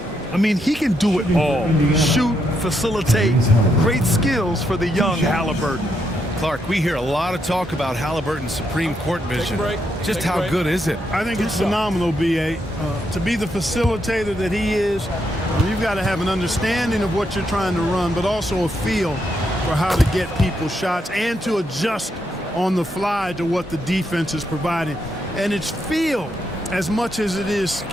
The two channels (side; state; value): both; normal; correlation 0.79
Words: I mean, he can do it all. Shoot, facilitate, great skills for the young Halliburton. Clark, we hear a lot of talk about Halliburton's supreme court vision. Just how good is it? I think it's phenomenal, B.A. To be the facilitator that he is, you've got to have an understanding of what you're trying to run, but also a feel for how to get people shots and to adjust on the fly to what the defense is providing. And it's feel as much as it is